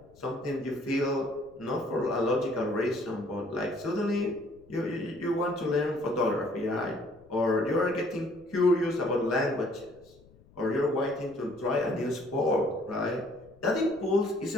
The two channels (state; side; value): noise; left; rumble, 27 dB below the sound